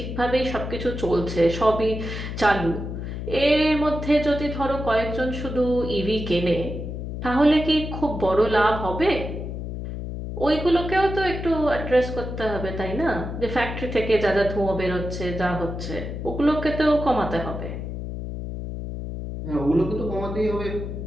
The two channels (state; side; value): noise; left; hum, 6 dB below the sound